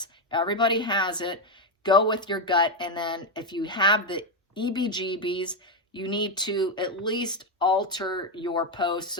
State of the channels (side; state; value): both; normal; correlation 0.05